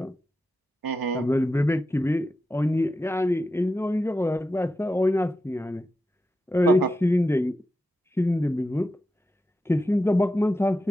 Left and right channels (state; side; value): normal; both; correlation 0.89